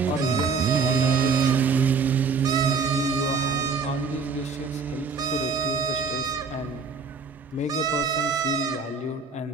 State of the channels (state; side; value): quieter; left; 5.0 dB